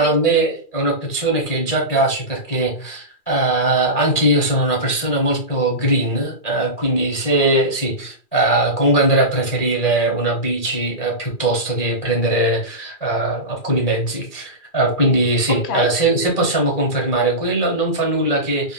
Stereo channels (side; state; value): right; late; 2.4 ms